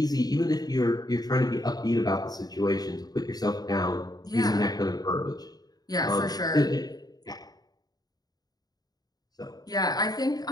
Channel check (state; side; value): late; right; 0.19 ms